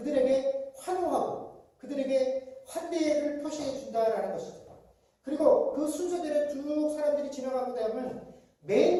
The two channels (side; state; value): both; identical; correlation 1.00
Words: 환호하고 그들에게 환대를 표시해 준다라는 것이죠. 그리고 그 순서대로 쭉 사람들이 지나가고 나면